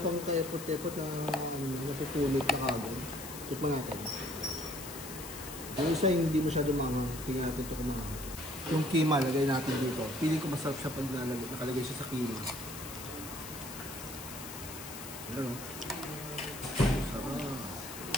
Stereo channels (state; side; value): noise; left; hiss, 11 dB below the sound